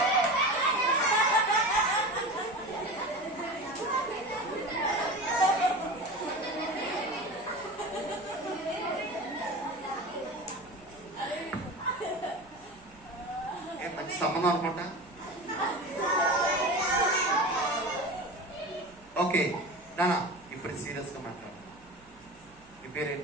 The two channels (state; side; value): noise; right; hum, 28 dB below the sound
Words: మంచి సంబంధం అనుకుంటా. ఓకే నానా, ఇప్పుడు సీరియస్ గా మాట్లాడు. మీ